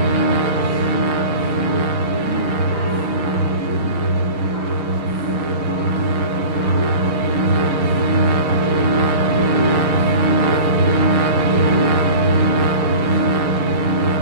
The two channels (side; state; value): left; late; 6.4 ms